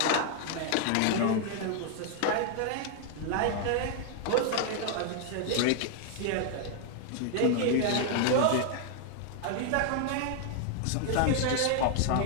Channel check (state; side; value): different; both; correlation 0.00